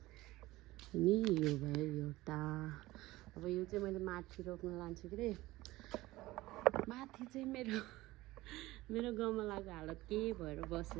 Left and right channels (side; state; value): left; quieter; 18.3 dB